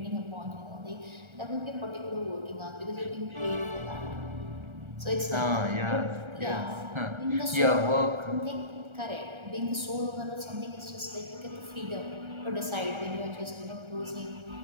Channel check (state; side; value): late; left; 1.4 ms